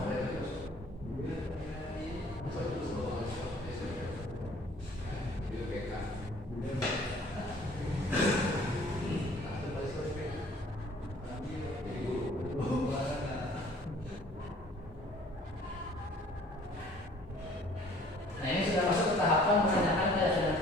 Nah ini sudah masuk ke tahapan menanyakan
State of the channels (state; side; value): normal; both; correlation 0.54